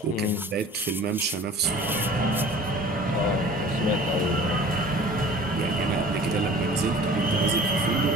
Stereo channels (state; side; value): normal; both; correlation 0.44